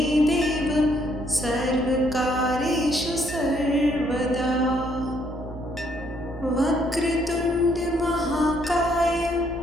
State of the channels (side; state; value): both; normal; correlation 0.70